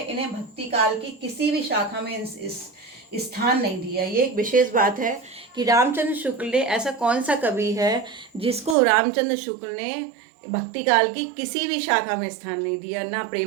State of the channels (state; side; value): drops out; left; at 8.8 s